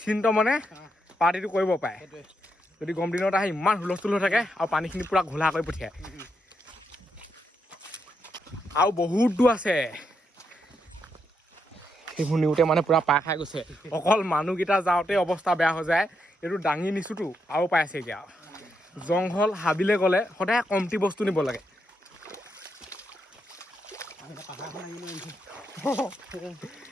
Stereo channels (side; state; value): both; normal; correlation 0.81